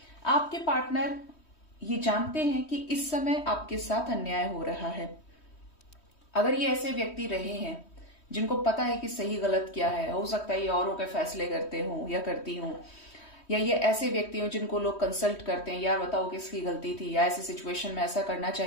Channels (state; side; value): late; right; 3.1 ms